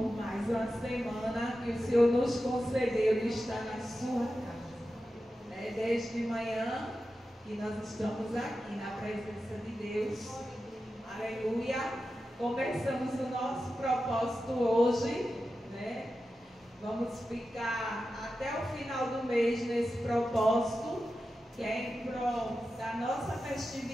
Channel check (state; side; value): normal; both; correlation 0.92